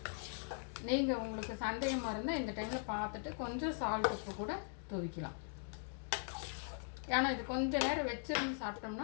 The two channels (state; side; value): silent; right; 51 dB below the other